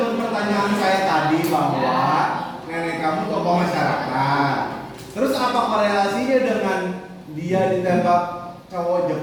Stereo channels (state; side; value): identical; both; correlation 1.00